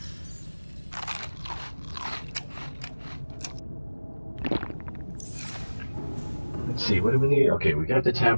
Let's see, what do we need? Okay, we got the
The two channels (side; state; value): both; inverted; correlation -1.00